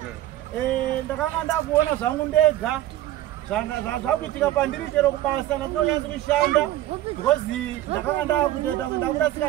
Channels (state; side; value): quieter; left; 14.3 dB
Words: Ndakanga kuona zvangu ndega. Zvakuitika pandiri chero kubasa ndinonyanza kushanda because ndakanga ndakutoita